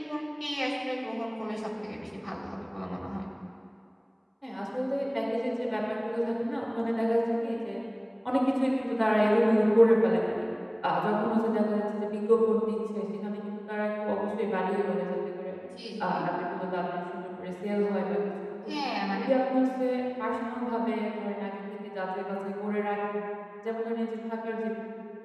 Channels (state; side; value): identical; both; correlation 1.00